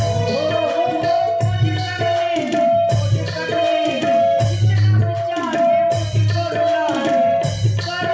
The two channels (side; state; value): both; identical; correlation 1.00